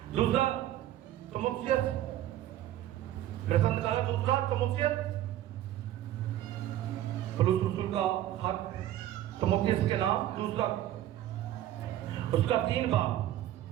दूसरा तमुक्सियत, मेरे साथ निकाला दूसरा तमुक्सियत, पौलुस रसूल का खत तमुक्सियत के नाम, दूसरा उसका 3 बाब।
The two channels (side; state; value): left; quieter; 13.0 dB